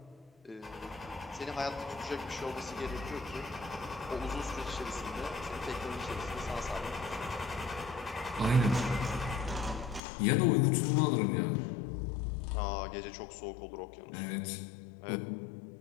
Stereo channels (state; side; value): drops out; right; at 10.0 s